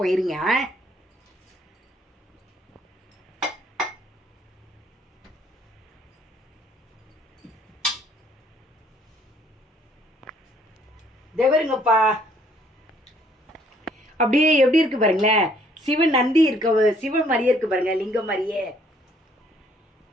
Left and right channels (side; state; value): both; normal; correlation 0.63